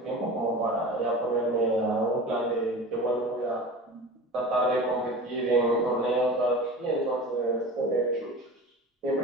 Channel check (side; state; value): both; normal; correlation 0.34